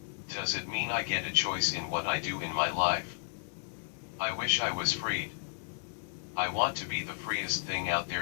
Does it mean I get a choice in what I do in my life? I wish I was freed. I want to be the freest thing out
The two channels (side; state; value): right; silent; 56 dB below the other